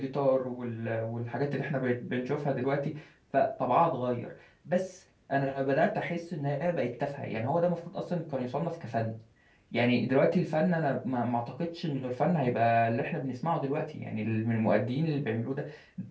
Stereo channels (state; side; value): identical; both; correlation 1.00